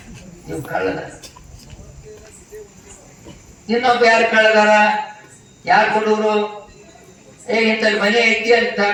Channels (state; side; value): identical; both; correlation 1.00